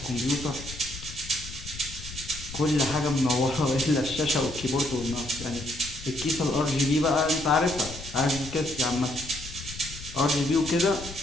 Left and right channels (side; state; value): left; noise; rumble, 13 dB below the sound